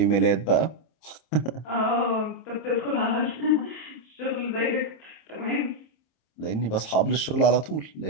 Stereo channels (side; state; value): right; late; 26 ms